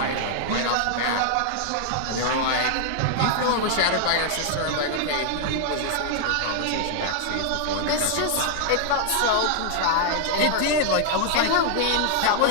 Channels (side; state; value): both; different; correlation 0.00